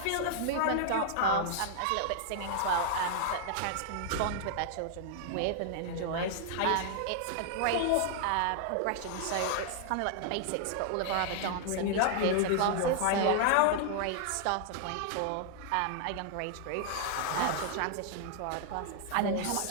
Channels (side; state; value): both; different; correlation 0.00